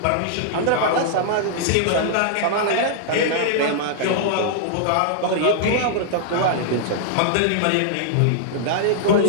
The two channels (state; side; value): different; both; correlation -0.01